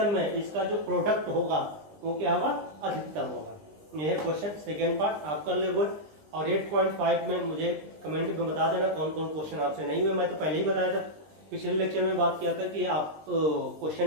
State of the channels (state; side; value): late; left; 20 ms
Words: में इसका जो प्रोडक्ट होगा वो क्या होगा, अधिकतम होगा। यह है क्वेश्चन सेकेंड पार्ट, आप कर ले गुड। और 8.5 में मुझे कमेंट में बता देना कौन कौन क्वेश्चन आपसे नहीं हुए। मैं तो पहले ही बताया था, पिछले लेक्चर में बात किया था कि आप